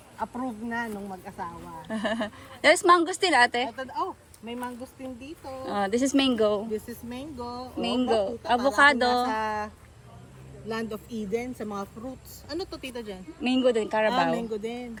Approved na nung mag-asawa. There's mangosteen, ate. May mangosteen dito. This is mango. This is mango. Mango. Nakita Avocado. natin nasa Land of Eden sa mga fruits. Ano to, tita Jen? Mango din, Carabao. Mango din.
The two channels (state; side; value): identical; both; correlation 1.00